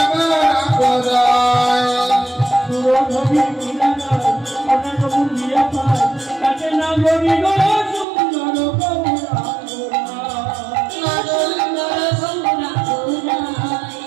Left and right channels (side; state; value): left; drops out; at 8.1 s